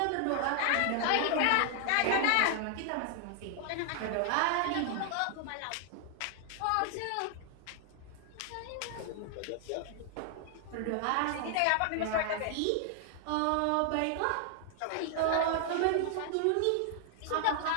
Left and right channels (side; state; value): both; different; correlation 0.00